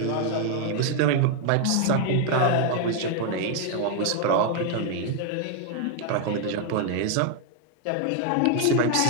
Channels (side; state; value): both; different; correlation 0.00